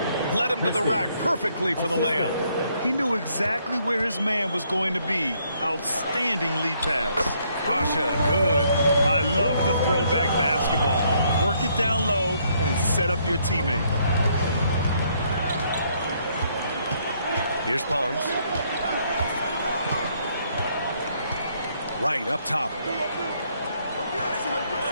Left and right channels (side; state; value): both; inverted; correlation -0.70